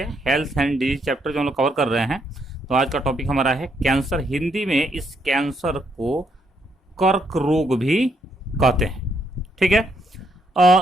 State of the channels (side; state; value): both; normal; correlation 0.74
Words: हेल्थ एंड डिजीज चैप्टर जो हम लोग कवर कर रहे हैं। तो आज का टॉपिक हमारा है कैंसर। हिंदी में इस कैंसर को कर्क रोग भी कहते हैं। ठीक है,